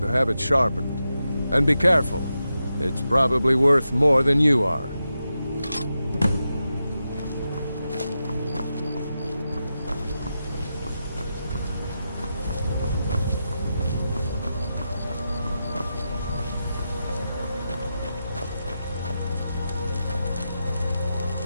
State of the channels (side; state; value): both; inverted; correlation -0.89